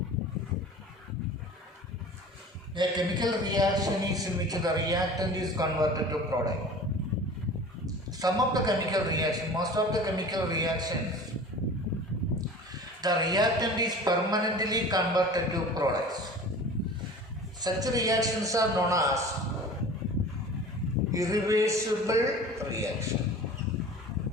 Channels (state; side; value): normal; both; correlation 0.40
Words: A chemical reaction is in which the reactant is converted to product. Some of the chemical reaction, most of the chemical reactions, the reactant is permanently converted to products. Such reactions are known as irreversible reaction.